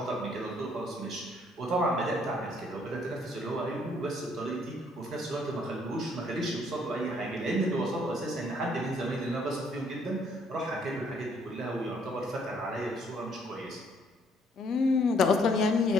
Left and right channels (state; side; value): normal; both; correlation 0.66